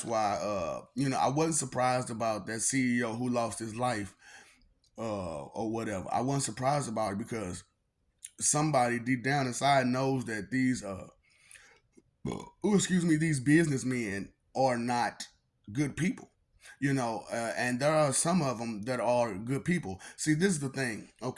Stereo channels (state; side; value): identical; both; correlation 1.00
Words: why I wasn't surprised about that CEO who lost his life or whatever. I wasn't surprised about it because somebody deep down inside knows that these businessmen are not good people. And there are some of them that are good people. See, this is the thing.